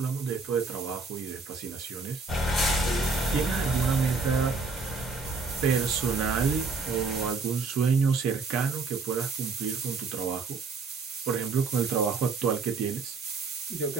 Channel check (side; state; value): left; quieter; 4.3 dB